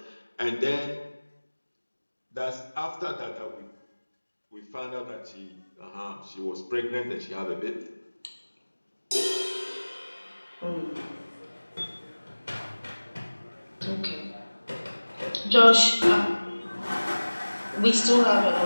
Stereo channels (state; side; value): inverted; both; correlation -1.00